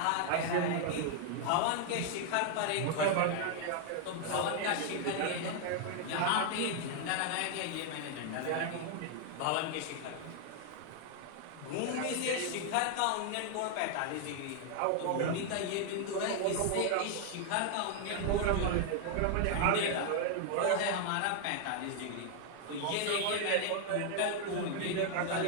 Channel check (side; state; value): both; different; correlation 0.00